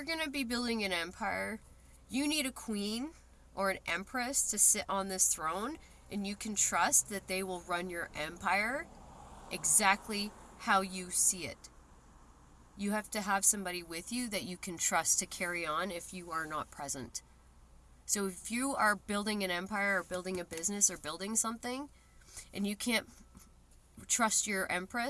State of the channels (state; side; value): identical; both; correlation 1.00